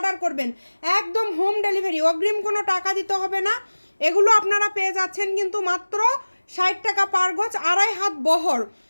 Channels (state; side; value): inverted; both; correlation -1.00